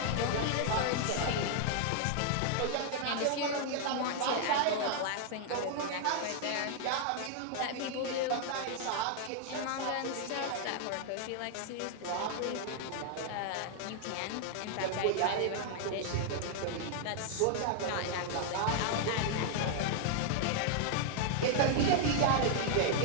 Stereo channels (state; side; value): different; both; correlation 0.00